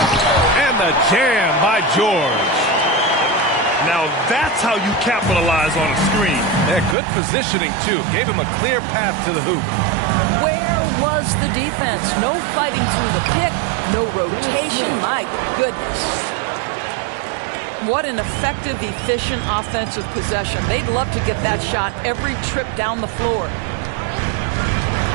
And the jam by George. Now that's how you capitalize on a screen. Yeah, good positioning, too. Gave him a clear path to the hoop. Where was the defense? No fighting through the pick, no rotation. My goodness. What an effective, efficient offensive possession. They'd love to get that shot every trip down the floor.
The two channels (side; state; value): left; drops out; at 7.0 s